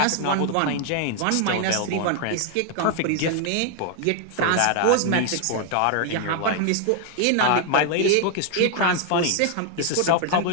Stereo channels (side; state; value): both; different; correlation 0.00